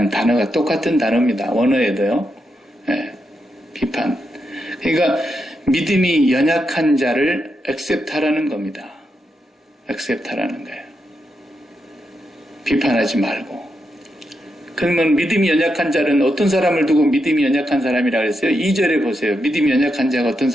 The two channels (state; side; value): normal; both; correlation 0.84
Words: 단어가 똑같은 단어입니다. 원어에도요. 네, 비판. 그러니까 믿음이 연약한 자를 액셉트하라는 겁니다. 액셉트하라는 거예요. 비판하지 말고. 그러면 믿음이 연약한 자는 어떤 사람을 두고 믿음이 연약한 사람이라고 했어요? 2절에 보세요. 믿음이 연약한 자가 어떤